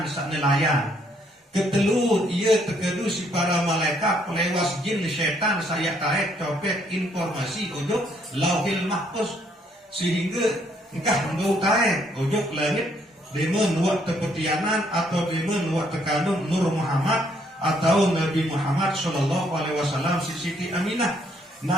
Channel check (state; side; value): normal; both; correlation 0.69